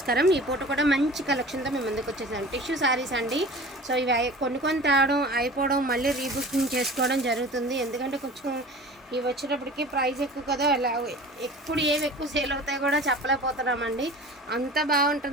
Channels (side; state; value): both; normal; correlation 0.40